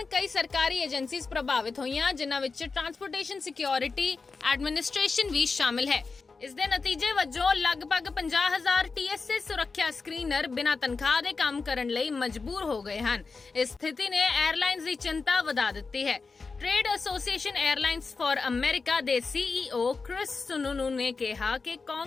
ਕਈ ਸਰਕਾਰੀ ਏਜੰਸੀਜ਼ ਪ੍ਰਭਾਵਿਤ ਹੋਈਆਂ, ਜਿਨ੍ਹਾਂ ਵਿੱਚ ਟਰਾਂਸਪੋਰਟੇਸ਼ਨ ਸਿਕਿਉਰਿਟੀ ਐਡਮਿਨਿਸਟ੍ਰੇਸ਼ਨ ਵੀ ਸ਼ਾਮਿਲ ਹੈ। ਇਸ ਦੇ ਨਤੀਜੇ ਵਜੋਂ ਲਗਭਗ 50,000 TSA ਸੁਰੱਖਿਆ ਸਕਰੀਨਰ ਬਿਨਾਂ ਤਨਖਾਹ ਦੇ ਕੰਮ ਕਰਨ ਲਈ ਮਜਬੂਰ ਹੋ ਗਏ ਹਨ। ਇਸ ਸਥਿਤੀ ਨੇ 에ਅਰਲਾਈਨਜ਼ ਦੀ ਚਿੰਤਾ ਵਧਾ ਦਿੱਤੀ ਹੈ। ਟ੍ਰੇਡ ਐਸੋਸੀਏਸ਼ਨ 에ਅਰਲਾਈਨਜ਼ ਫਾਰ ਅਮਰੀਕਾ ਦੇ CEO ਕ੍ਰਿਸ ਸੁਨੂਨੂ ਨੇ ਕਿਹਾ ਕਿ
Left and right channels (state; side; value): quieter; right; 4.4 dB